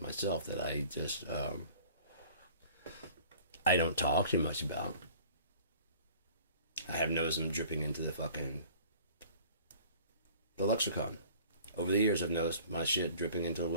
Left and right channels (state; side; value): inverted; both; correlation -0.48